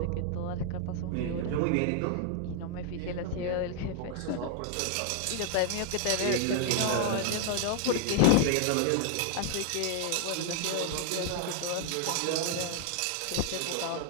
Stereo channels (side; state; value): both; different; correlation 0.00